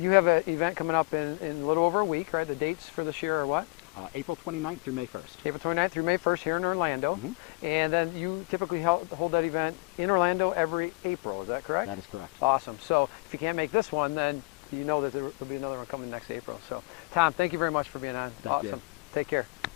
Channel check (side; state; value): right; quieter; 28.5 dB